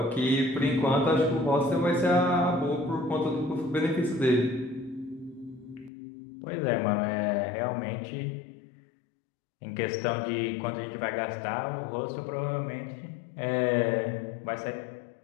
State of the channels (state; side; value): drops out; right; at 5.9 s